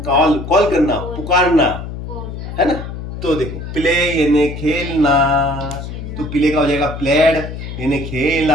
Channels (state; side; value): noise; left; hum, 8 dB below the sound